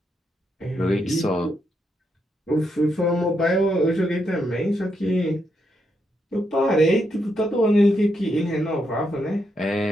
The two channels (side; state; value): both; normal; correlation 0.80